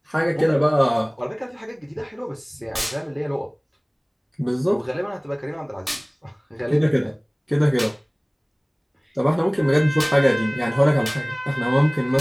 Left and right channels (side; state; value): both; identical; correlation 1.00